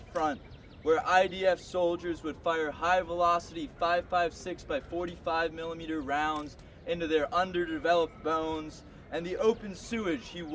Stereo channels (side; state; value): both; identical; correlation 1.00